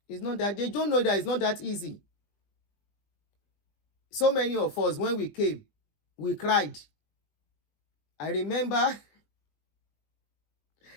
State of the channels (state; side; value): late; right; 20 ms